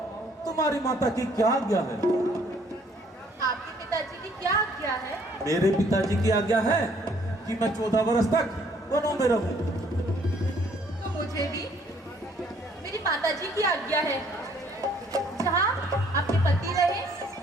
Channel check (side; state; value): both; normal; correlation 0.62